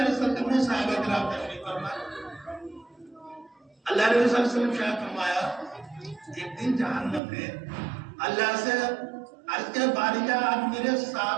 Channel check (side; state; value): left; drops out; at 7.2 s